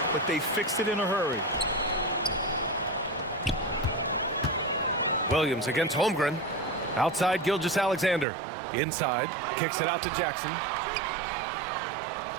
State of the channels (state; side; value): drops out; left; at 8.2 s